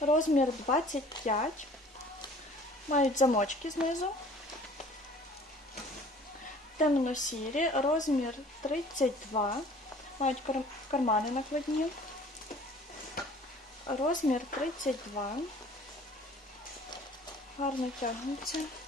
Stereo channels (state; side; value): normal; both; correlation 0.50